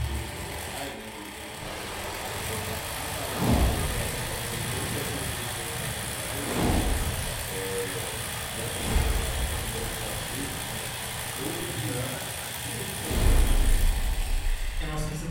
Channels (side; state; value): both; identical; correlation 1.00